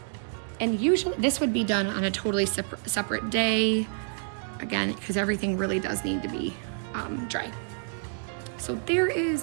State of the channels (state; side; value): silent; left; 59 dB below the other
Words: And usually this would be done on a totally separate day, again, because everything really does need to be dry. So there is